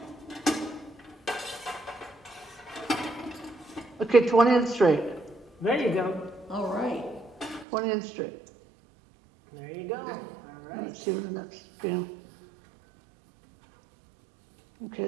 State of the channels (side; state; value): left; drops out; at 7.7 s